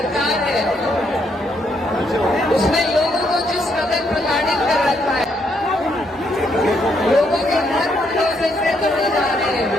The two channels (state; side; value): normal; both; correlation 0.74